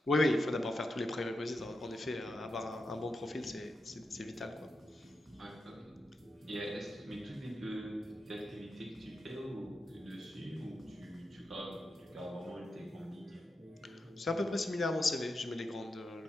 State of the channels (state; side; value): normal; both; correlation 0.87